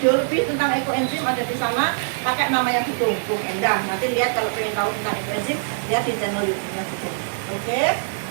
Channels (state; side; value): silent; left; digital silence